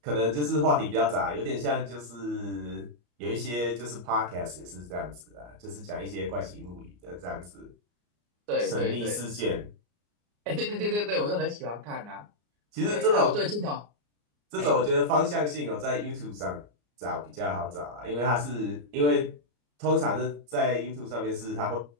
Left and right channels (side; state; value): left; late; 34 ms